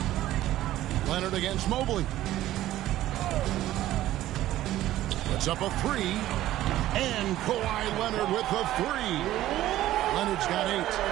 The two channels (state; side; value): quieter; left; 14.3 dB